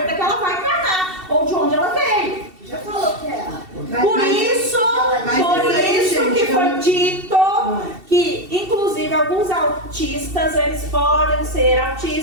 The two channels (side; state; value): left; late; 2.7 ms